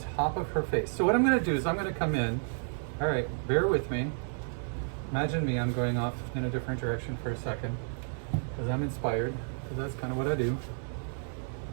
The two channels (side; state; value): left; silent; 57 dB below the other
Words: of her face. So what I'm gonna do is I'm gonna come in, all right, bear with me. Imagine me, I'm going off in a different direction for a second because I'm inspired, because that's kind of what I do.